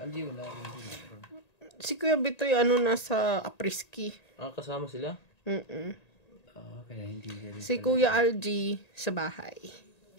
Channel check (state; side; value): late; right; 1.9 ms